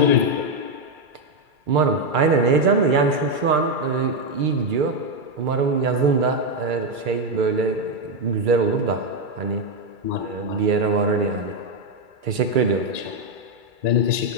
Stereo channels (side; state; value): left; late; 2.3 ms